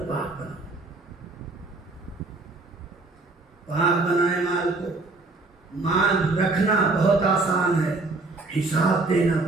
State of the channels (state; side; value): quieter; left; 3.3 dB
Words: پاک بناؤ، پاک بنائے مال کو۔ مال رکھنا بہت آسان ہے، حساب دینا